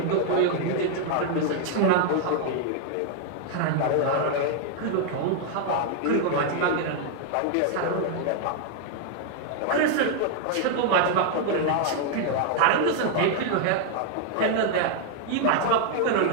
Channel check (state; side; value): different; both; correlation 0.00